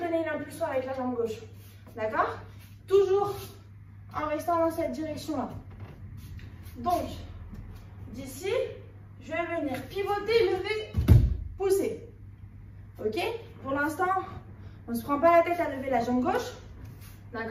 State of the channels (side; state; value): both; identical; correlation 1.00